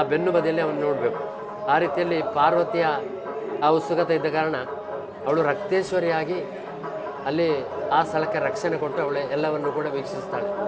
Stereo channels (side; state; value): both; identical; correlation 1.00